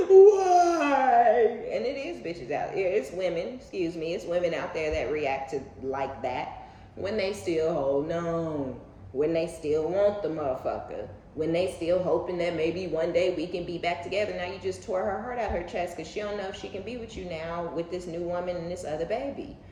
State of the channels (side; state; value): both; identical; correlation 1.00